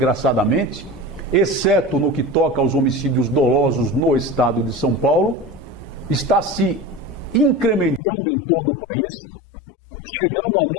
exceto no que toca aos homicídios dolosos no Estado de São Paulo, está se incrementando em todo o país, chegando a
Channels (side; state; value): right; drops out; at 8.0 s